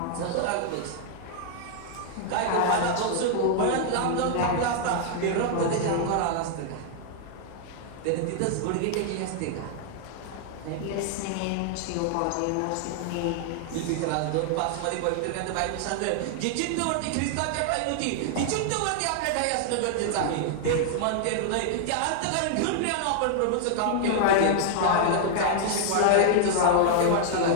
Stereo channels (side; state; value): both; different; correlation 0.00